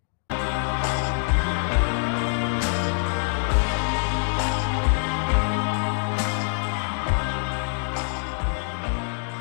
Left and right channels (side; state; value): right; silent; 62 dB below the other